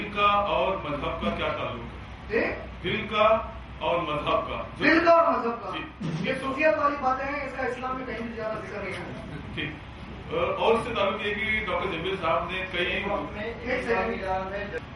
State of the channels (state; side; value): identical; both; correlation 1.00